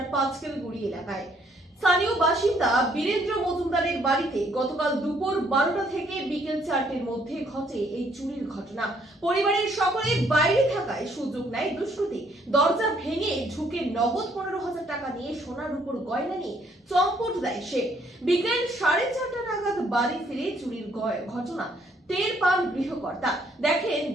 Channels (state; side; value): normal; both; correlation 0.67